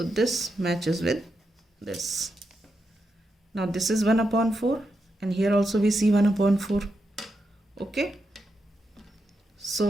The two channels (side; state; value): both; normal; correlation 0.85